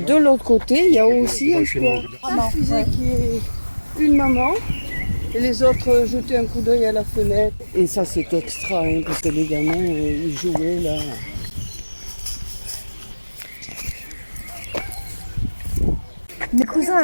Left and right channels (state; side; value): inverted; both; correlation -1.00